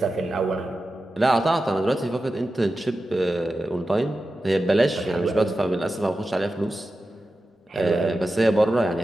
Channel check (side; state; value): both; normal; correlation 0.92